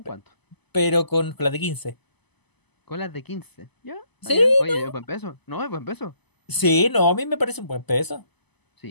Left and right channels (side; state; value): right; late; 0.99 ms